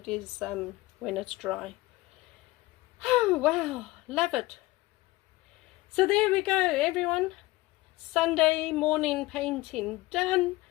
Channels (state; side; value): quieter; right; 19.9 dB